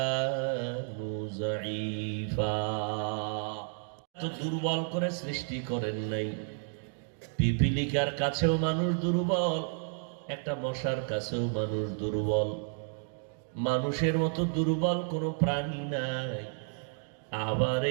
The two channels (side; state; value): left; silent; 57 dB below the other